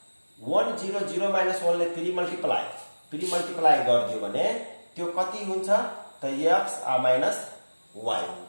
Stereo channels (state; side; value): inverted; both; correlation -1.00